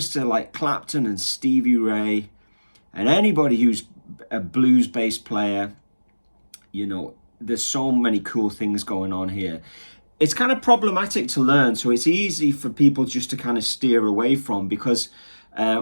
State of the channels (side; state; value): both; inverted; correlation -1.00